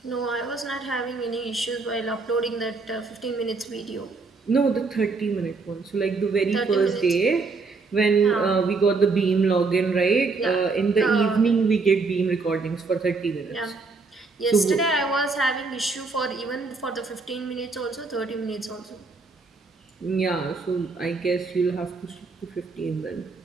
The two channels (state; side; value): quieter; left; 4.1 dB